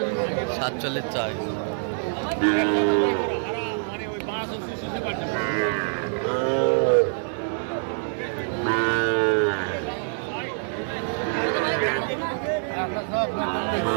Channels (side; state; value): left; silent; digital silence